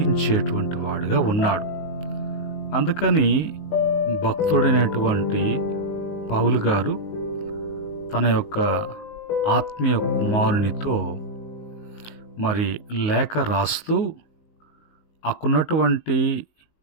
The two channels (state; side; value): late; right; 19 ms